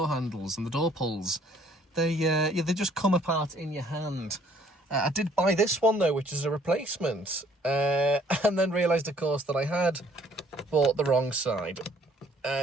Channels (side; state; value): both; normal; correlation 0.61